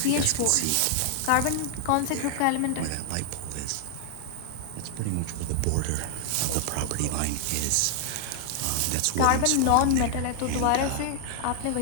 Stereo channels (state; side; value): different; both; correlation 0.00